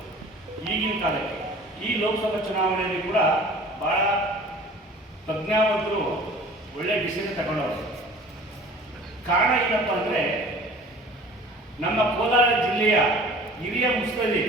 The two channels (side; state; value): both; normal; correlation 0.45